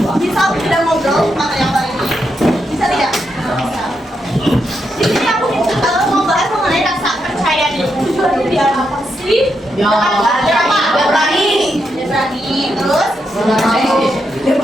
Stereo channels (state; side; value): normal; both; correlation 0.82